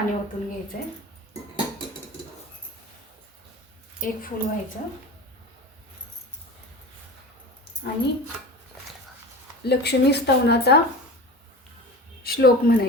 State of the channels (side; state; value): both; normal; correlation 0.33